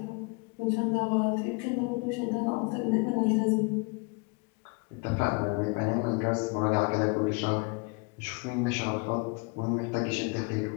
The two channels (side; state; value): right; quieter; 30.6 dB